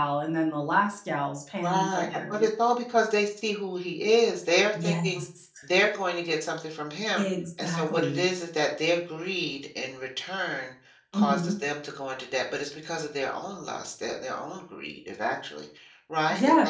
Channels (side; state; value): both; identical; correlation 1.00